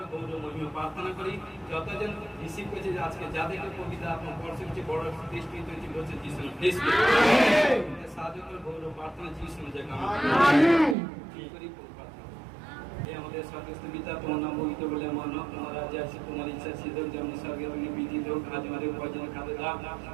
গৌরব মহিমা প্রার্থনা করি। যতজন রিসিভ করেছে আজকে যাদেরকে কবিতা আপনার বর্ষের চেয়ে বড় দৃষ্টি তৈরি করছে যিশু সাহায্য করে গৌরব প্রার্থনা যিশু জায়গা করি। আমাদের স্বর্গস্থ পিতা তোমার নাম পবিত্র বলে আমার নাম তোমার রাজ্য আসে তোমার ইচ্ছা সিদ্ধ যেমন স্বর্গে বিধিত হোক। আজ আমাদের ভোজন খাদ্য দাও।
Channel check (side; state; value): left; drops out; at 11.0 s